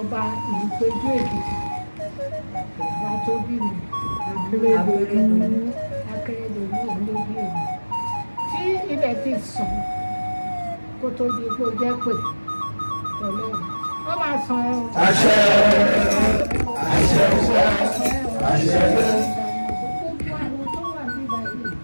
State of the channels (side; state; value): both; inverted; correlation -1.00